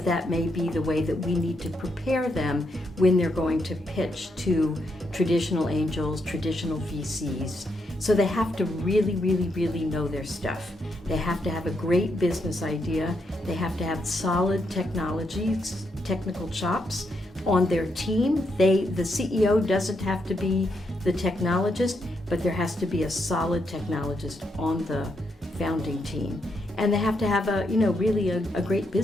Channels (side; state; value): both; normal; correlation 0.79